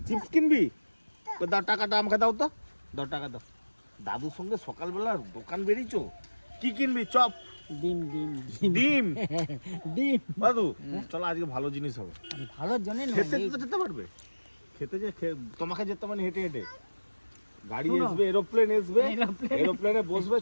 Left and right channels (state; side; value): inverted; both; correlation -1.00